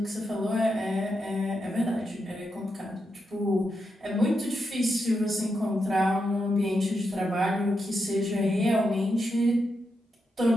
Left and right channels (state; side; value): normal; both; correlation 0.85